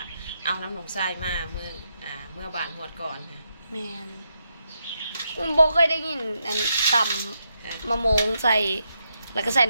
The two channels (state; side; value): inverted; both; correlation -0.82